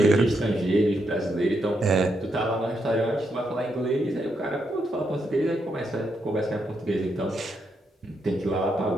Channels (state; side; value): normal; both; correlation 0.80